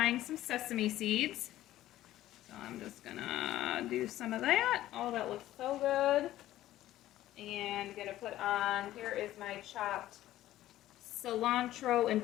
some sesame seeds. So I'm just gonna do some of that. Oh, that looks so good. And gonna put on, here is my chopped cilantro and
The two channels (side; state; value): right; quieter; 14.3 dB